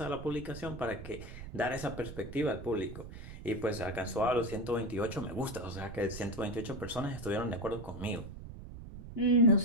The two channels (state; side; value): noise; right; rumble, 12 dB below the sound